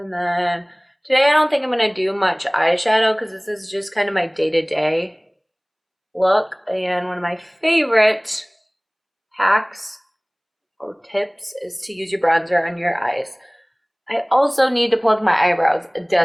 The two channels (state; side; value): identical; both; correlation 1.00